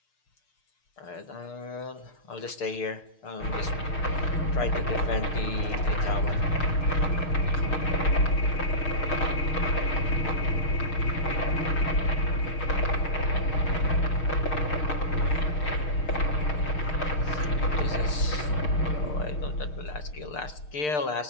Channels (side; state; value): right; late; 6.7 ms